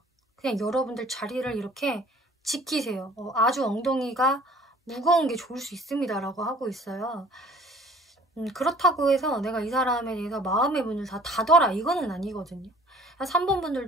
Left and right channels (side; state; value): both; normal; correlation 0.52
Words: 그냥 여러분들 자리를 이렇게 지키세요. 아주 엉덩이가 무거운 게 좋을 수 있습니다 라고 하고 있어요. 그렇다고 해서 내가 이 사람에 대해서 마음의 문을 다 닫아라 이거는 아니거든요. 3번